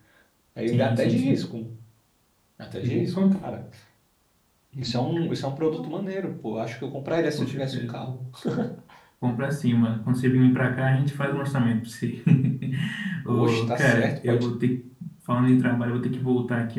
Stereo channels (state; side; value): identical; both; correlation 1.00